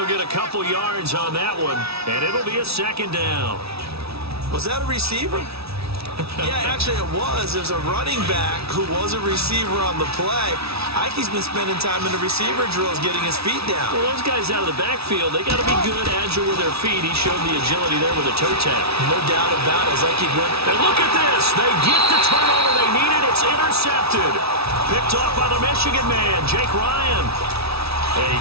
get a couple yards on that one, and it'll be a 2nd down. Was that a receiver? Yeah, actually it was. It was a running back who was a receiver on the play. Ikey's been spending time in the receiver drills getting his feet down. Well, those guys out of the backfield, they got to be good, agile with their feet. He showed the agility there with a toe tap. No doubt about it. As Ikey went. And look at this. They get the turnover they needed. It's intercepted. Picked off by the Michigan man, Jake Ryan. A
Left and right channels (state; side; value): late; left; 0.77 ms